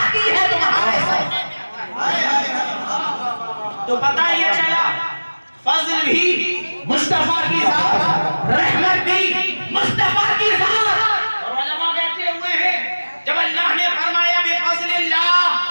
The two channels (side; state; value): both; inverted; correlation -1.00